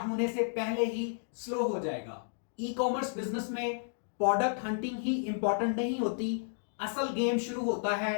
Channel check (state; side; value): silent; right; digital silence